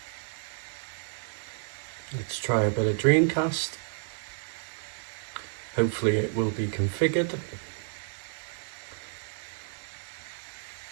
Let's try a bit of Dreamcast. Hopefully it will be configured.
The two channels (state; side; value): silent; left; digital silence